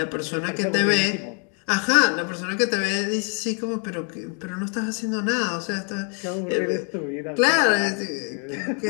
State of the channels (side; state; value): right; quieter; 39.8 dB